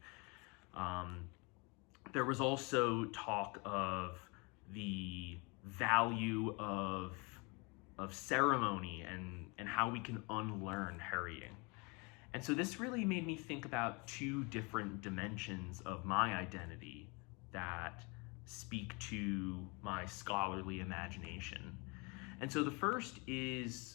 There was also talk of the value of ceremony and how we can unlearn hurrying. And so this really made me think about two different dimensions of my identity that speak to my scholarly imagination. And so the first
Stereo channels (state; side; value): quieter; right; 29.6 dB